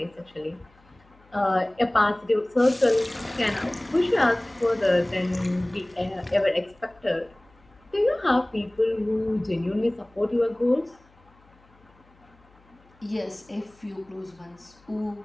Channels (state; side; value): noise; left; hum, 30 dB below the sound